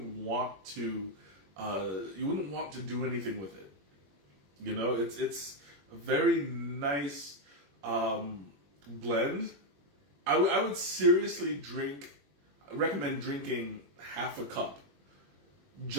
want to do anything with it. It's a very nice blend. I would seriously recommend drinking half a cup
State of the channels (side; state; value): left; late; 21 ms